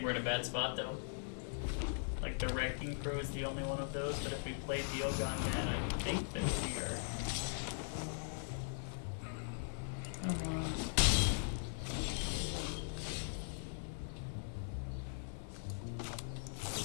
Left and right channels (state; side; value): silent; right; 51 dB below the other